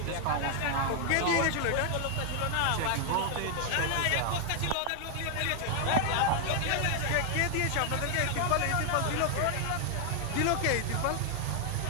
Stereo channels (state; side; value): different; both; correlation 0.00